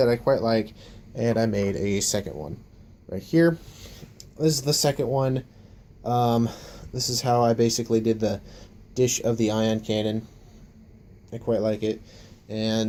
I quite like, and I made a second one right here. This is the second one. This is how I basically did the dish of the Ion Cannon. I quite like it.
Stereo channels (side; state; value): both; identical; correlation 1.00